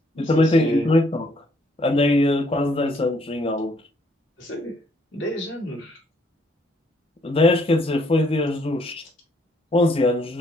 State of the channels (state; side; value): normal; both; correlation 0.68